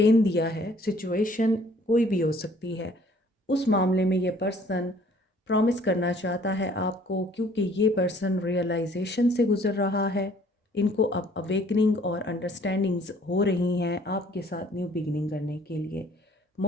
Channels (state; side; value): normal; both; correlation 0.58